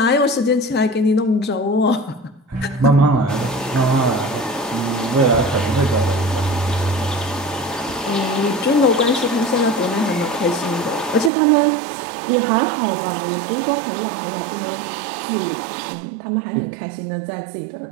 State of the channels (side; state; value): left; drops out; at 11.3 s